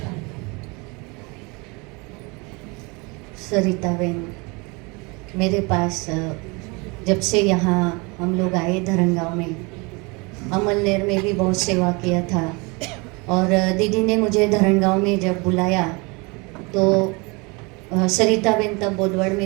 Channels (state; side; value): quieter; left; 28.1 dB